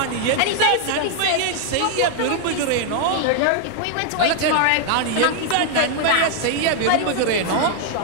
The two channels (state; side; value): different; both; correlation 0.00